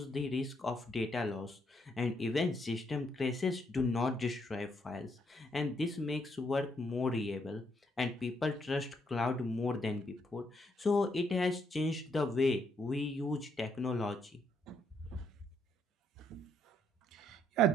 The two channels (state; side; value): normal; both; correlation 0.74